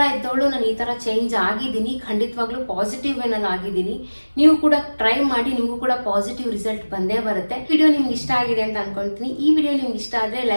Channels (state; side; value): inverted; both; correlation -1.00